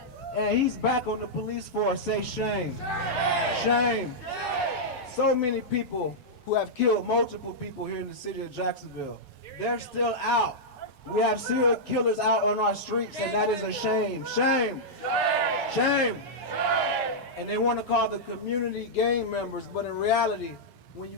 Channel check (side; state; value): both; normal; correlation -0.08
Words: And he's back on the police force. Say shame. Shame. So many people who have killed multiple people here in the city of Jacksonville, they're still out. We have serial killers out on our streets, and that is a shame. Shame. Shame. And they want to call the community gang members, but in reality, when you